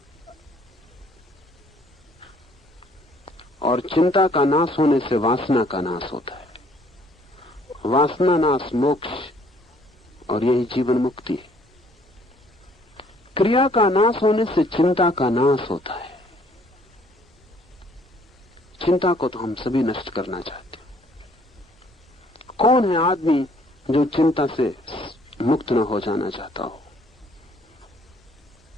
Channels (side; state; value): both; normal; correlation 0.62